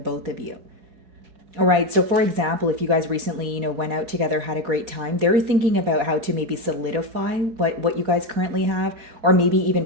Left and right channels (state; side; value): late; left; 4.2 ms